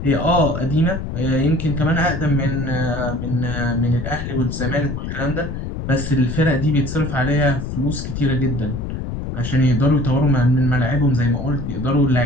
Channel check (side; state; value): left; noise; rumble, 5 dB below the sound